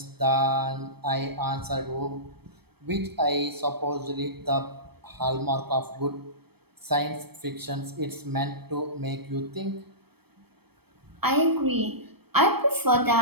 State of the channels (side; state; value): left; late; 0.97 ms